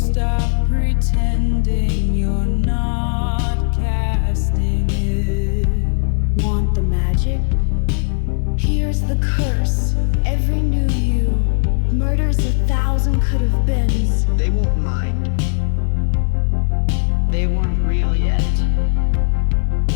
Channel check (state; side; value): silent; right; 66 dB below the other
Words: pretending you're not casting it. Want the magic? Here's the curse. Every new you murders 1,000 could have been. They won't mind. They weren't real yet.